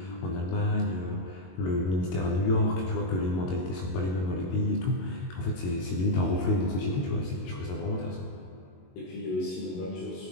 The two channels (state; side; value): late; right; 22 ms